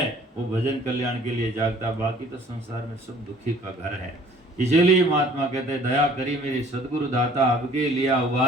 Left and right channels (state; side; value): normal; both; correlation 0.54